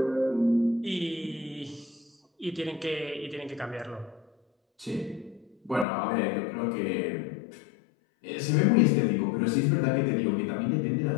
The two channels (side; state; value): right; drops out; at 5.9 s